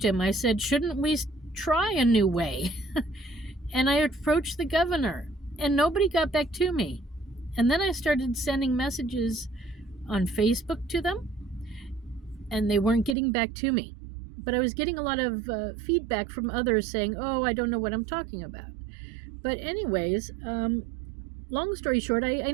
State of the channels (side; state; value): left; drops out; at 13.2 s